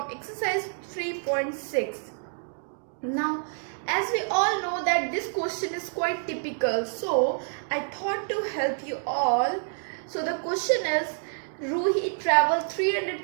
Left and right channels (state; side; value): silent; left; digital silence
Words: exercise 3.6. Now, as we all know that this question is quite typical, so I thought to help you all. So the question is, Roohi traveled